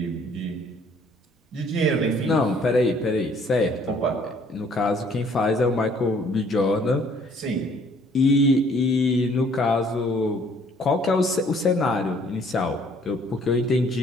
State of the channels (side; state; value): both; normal; correlation 0.60